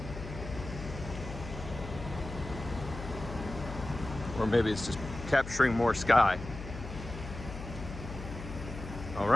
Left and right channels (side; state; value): left; noise; hum, 10 dB below the sound